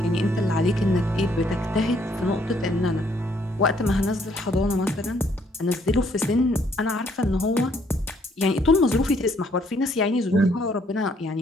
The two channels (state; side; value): normal; both; correlation 0.67